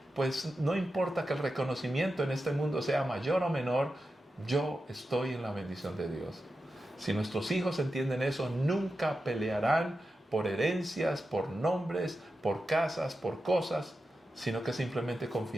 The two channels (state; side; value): normal; both; correlation 0.90